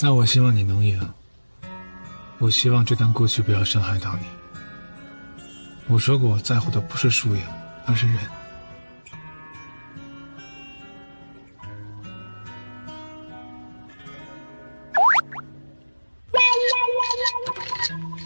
那我希望你能赢。我希望这段过去不要伤害到你。我说过，我在乎的不是输赢，而是人。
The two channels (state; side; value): inverted; both; correlation -1.00